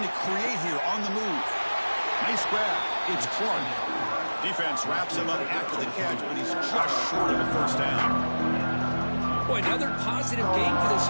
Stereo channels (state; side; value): inverted; both; correlation -1.00